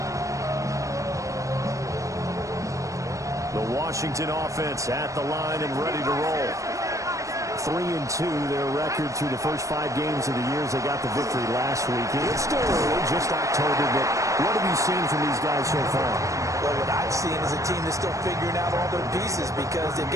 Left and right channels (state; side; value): late; left; 0.15 ms